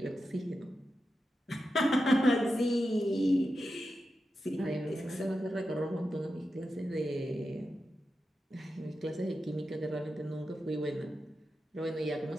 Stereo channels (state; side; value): normal; both; correlation 0.90